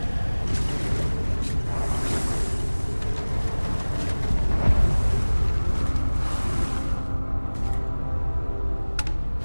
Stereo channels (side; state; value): both; inverted; correlation -1.00